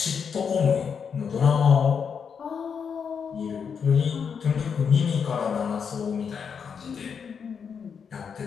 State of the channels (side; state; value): right; quieter; 6.6 dB